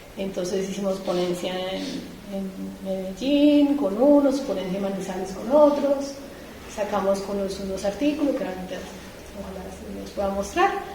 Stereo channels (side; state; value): both; identical; correlation 1.00